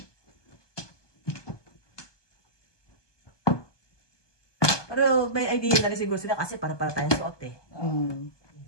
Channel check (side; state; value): right; late; 1.2 ms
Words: Pero may idea na rin siguro sila kasi para tayong suot eh.